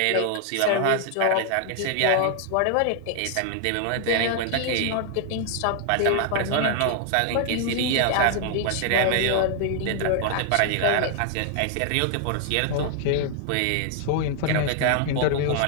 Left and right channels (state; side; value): different; both; correlation 0.00